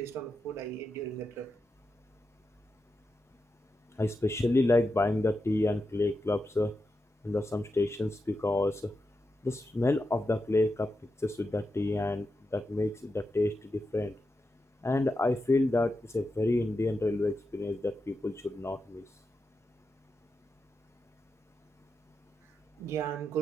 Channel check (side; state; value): both; normal; correlation 0.88